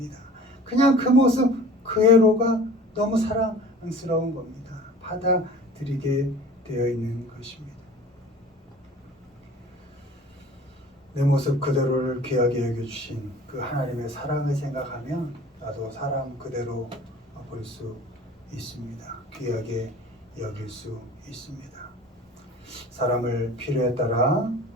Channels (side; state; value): both; normal; correlation 0.44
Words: 그냥 그 모습 그대로가 너무 사랑스러운 겁니다. 받아들이게 되어 있는 것입니다. 내 모습 그대로를 귀하게 여겨주신 그 하나님의 사랑을 생각하면 나도 사람 그대로 볼 수 있습니다. 귀하게 여길 수 있습니다. 사람을 필요에 따라